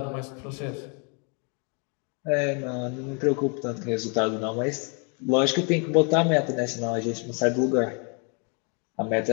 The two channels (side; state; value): right; quieter; 36.6 dB